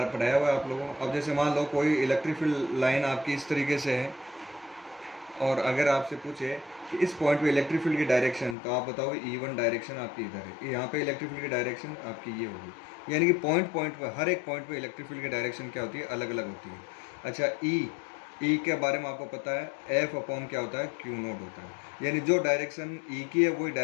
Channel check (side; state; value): right; drops out; at 8.6 s